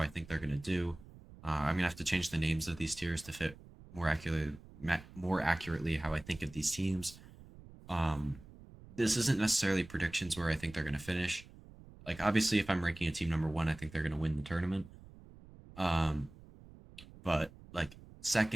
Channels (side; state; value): right; noise; rumble, 20 dB below the sound